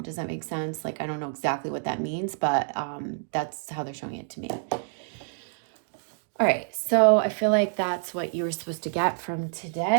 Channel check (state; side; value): silent; left; digital silence